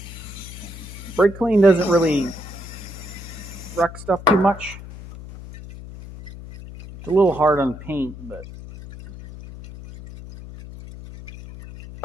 Brake clean doesn't really wreck stuff too much. It's a little hard on paint, but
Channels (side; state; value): left; noise; hum, 14 dB below the sound